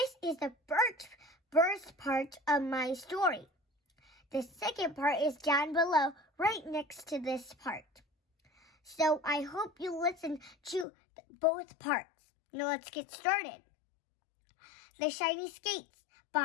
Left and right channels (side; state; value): right; drops out; at 10.9 s